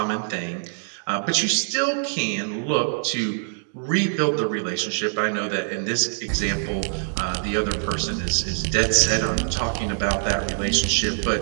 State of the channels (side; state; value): left; silent; digital silence